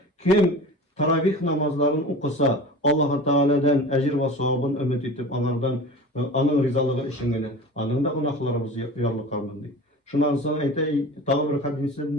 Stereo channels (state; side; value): normal; both; correlation 0.36